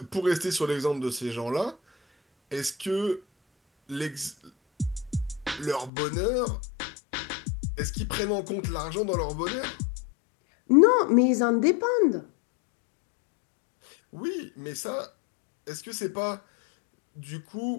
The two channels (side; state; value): right; drops out; at 5.9 s